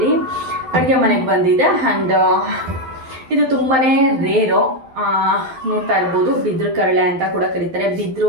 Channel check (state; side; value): late; left; 12 ms